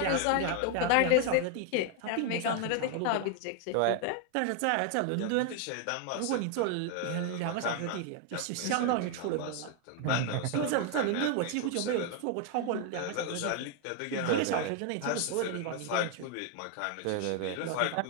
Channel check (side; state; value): both; different; correlation 0.00